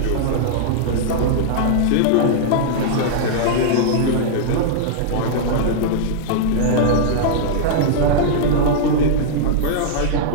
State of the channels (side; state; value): both; different; correlation -0.02